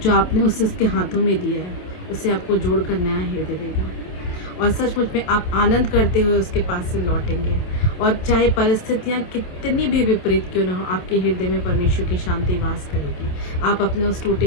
जो आपने उसके हाथों में दिया है, उसे आपको जोड़कर नया हृदय देगा, और सचमुच में आप आनंद करते हुए उसके पास से लौटेंगे। और चाहे परिस्थितियाँ कितनी भी विपरीत क्यों ना हो, आपके हृदय में परमेश्वर की शांति वास करेगी। आप अपने उस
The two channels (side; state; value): right; late; 27 ms